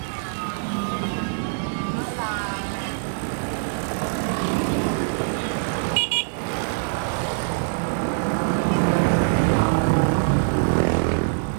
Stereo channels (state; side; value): silent; left; digital silence